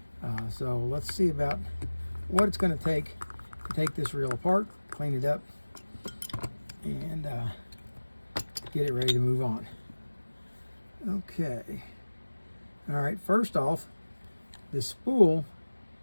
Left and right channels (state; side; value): inverted; both; correlation -1.00